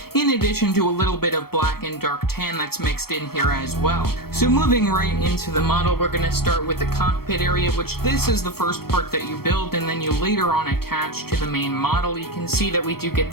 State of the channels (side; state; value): right; late; 0.94 ms